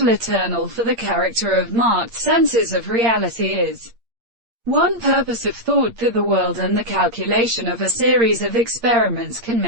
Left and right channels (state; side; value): late; left; 8.6 ms